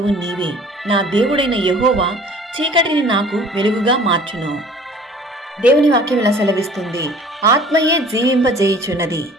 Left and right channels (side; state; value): both; normal; correlation 0.49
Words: నీవే, నా దేవుడైన యెహోవా చీకటిని నాకు వెలుగుగా మార్చును. దేవుని వాక్యం ఇలా సెలవిస్తుంది, ఆత్మయే జీవింపజేయుచున్నది,